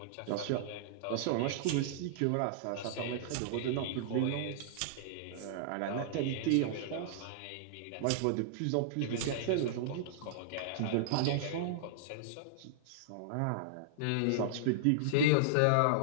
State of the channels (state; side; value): different; both; correlation -0.02